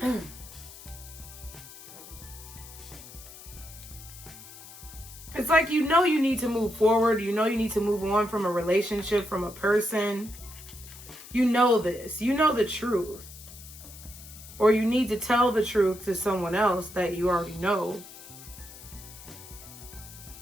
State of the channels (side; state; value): left; noise; hiss, 17 dB below the sound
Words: It's like, you know you need to move forward. You know you need to move on from a relationship, from a person. You know this. You know the truth. Or you need to tell the truth to someone else that you already know.